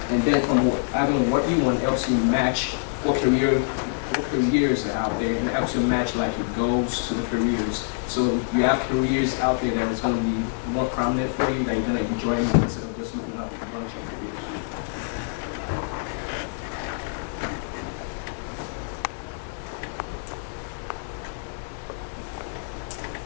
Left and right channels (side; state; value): right; silent; digital silence